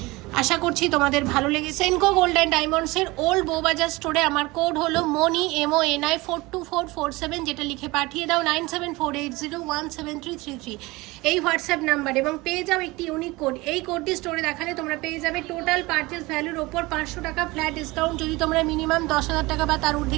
আশা করছি তোমাদের ভালো লেগেছে। সেনকো গোল্ড অ্যান্ড ডায়মন্ডসের ওল্ড বউবাজার স্টোরে আমার কোড হলো মনি MONI 42447, যেটা লিখে পাঠিয়ে দাও 9748017333 এই হোয়াটসঅ্যাপ নাম্বার, এবং পেয়ে যাও একটি ইউনিক কোড। এই কোডটি স্টোরে দেখালে তোমরা পেয়ে যাবে টোটাল পারচেস ভ্যালুর ওপর 500 টাকা ফ্ল্যাট ডিসকাউন্ট, যদি তোমরা মিনিমাম 10,000 টাকা বা তার ঊর্ধ্বে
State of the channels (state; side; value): quieter; left; 22.0 dB